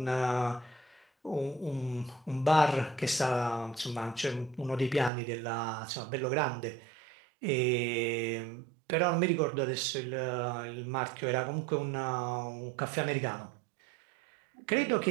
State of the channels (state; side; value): drops out; left; at 5.1 s